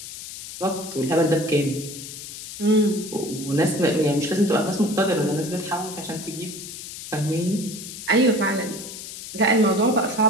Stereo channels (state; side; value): noise; left; hiss, 11 dB below the sound